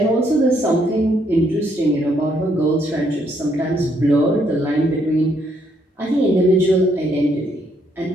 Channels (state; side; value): normal; both; correlation 0.72